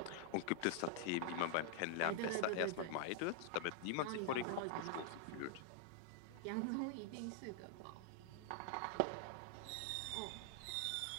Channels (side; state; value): both; different; correlation 0.00